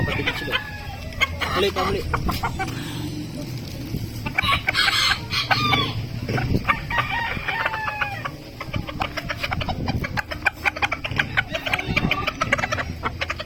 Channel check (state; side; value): identical; both; correlation 1.00